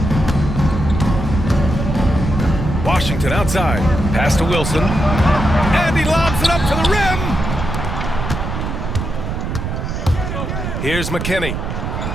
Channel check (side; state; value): right; noise; rumble, 4 dB below the sound